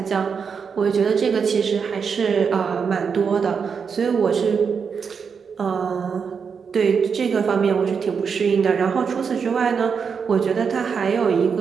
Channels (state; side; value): quieter; left; 6.1 dB